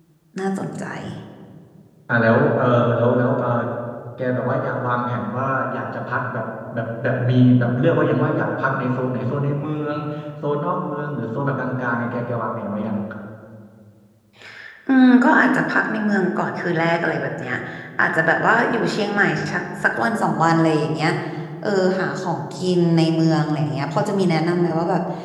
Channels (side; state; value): both; identical; correlation 1.00